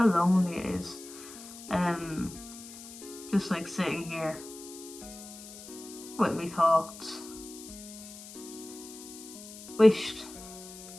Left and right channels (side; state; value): left; noise; hiss, 15 dB below the sound